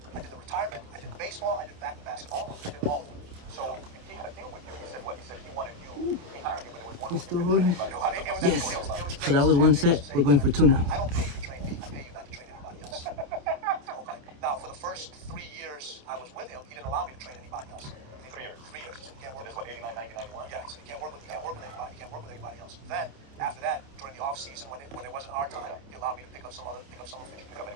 I did the retirement. I did baseball. I did basketball. I did all of them. So he had a deal with you. He said what? He said he wanted you. He hired you, but it was one. We're still rolling. Yes. Yes. So that was one set. We're going for two now. I don't pay you to train me. I pay you not to train anybody else. Okay. Now, for the first 3 years I was with him, he didn't allow me to train anybody else. 3 years. 3 years. He said you can't work. This was 89, 90, 91. Yeah. He said you can't work with anybody. You can't work with anybody else. Then after that, during the off season when it wasn't our time, he allowed me to pick up some officials. Pick up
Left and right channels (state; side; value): late; left; 29 ms